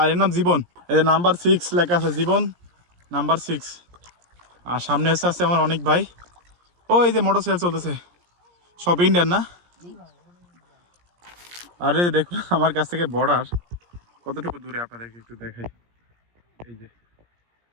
এর নাম জীবন। এই যে নাম্বার 6 লেখা আছে, জীবন নাম্বার 6। আর সামনে এসে আছে আমার অনেক ভাই। ও এই যে মোটরসাইকেল চলতেছে, সব ইন্ডিয়ান না? আরে দেখুন আমার কাছ থেকে বর্ডার কতটুকু দূরে, আপনাদেরকে একটু দেখাই। এই যে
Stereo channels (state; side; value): late; left; 17 ms